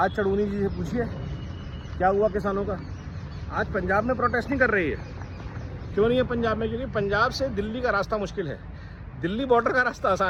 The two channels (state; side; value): identical; both; correlation 1.00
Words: चढ़ूनी जी से पूछिए क्या हुआ किसानों का। आज पंजाब में प्रोटेस्ट नहीं कर रही है। क्यों नहीं है पंजाब में? क्योंकि पंजाब से दिल्ली का रास्ता मुश्किल है, दिल्ली बॉर्डर का रास्ता